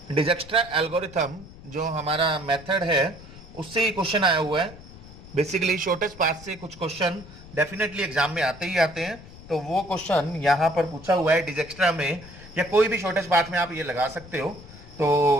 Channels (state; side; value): noise; left; rumble, 18 dB below the sound